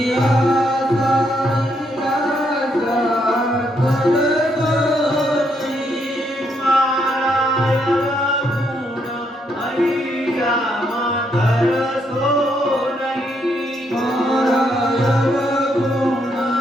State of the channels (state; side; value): normal; both; correlation 0.75